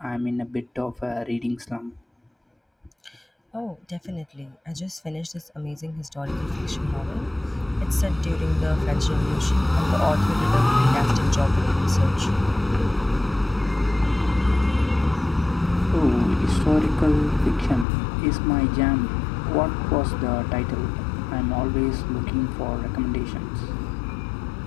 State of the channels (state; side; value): drops out; right; at 17.9 s